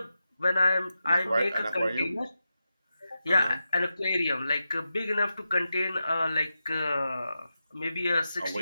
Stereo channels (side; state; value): both; inverted; correlation -0.90